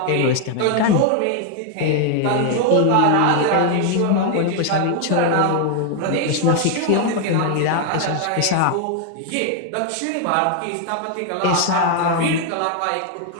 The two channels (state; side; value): different; both; correlation 0.00